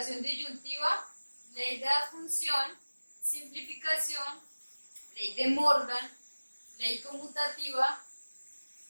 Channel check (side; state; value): both; inverted; correlation -1.00